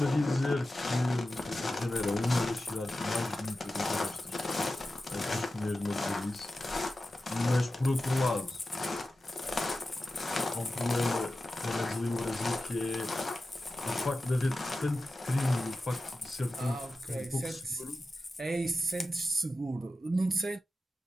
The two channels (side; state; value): both; normal; correlation 0.93